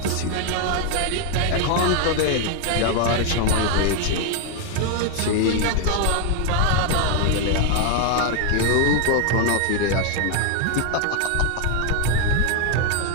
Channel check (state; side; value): different; both; correlation 0.01